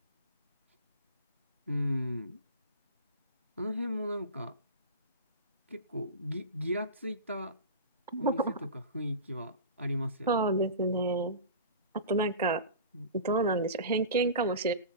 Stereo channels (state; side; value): inverted; both; correlation -0.31